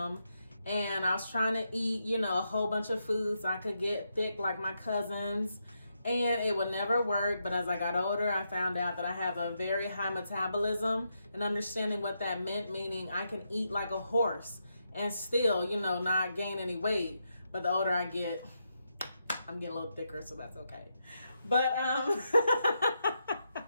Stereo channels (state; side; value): inverted; both; correlation -0.83